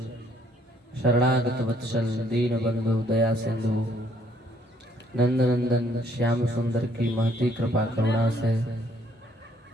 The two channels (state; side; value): normal; both; correlation 0.65